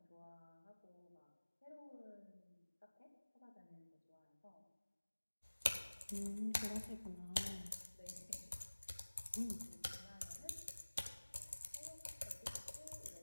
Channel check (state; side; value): inverted; both; correlation -1.00